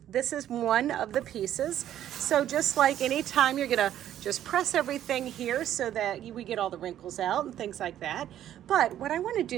this is one of the pieces. So just like anytime, you're going to just press everything here so that we get all the wrinkles out and things like that. But what I want to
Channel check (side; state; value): left; quieter; 11.4 dB